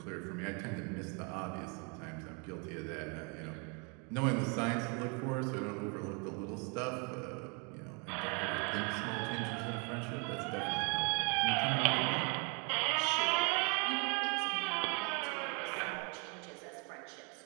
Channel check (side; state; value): left; quieter; 34.1 dB